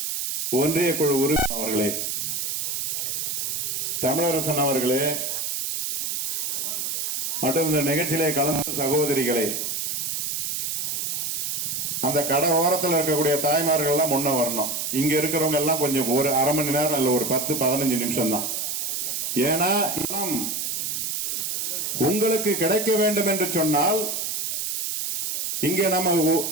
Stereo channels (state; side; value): noise; right; hiss, 2 dB below the sound